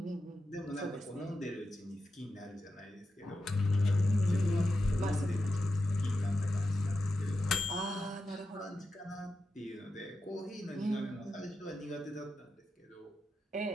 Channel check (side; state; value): both; normal; correlation 0.89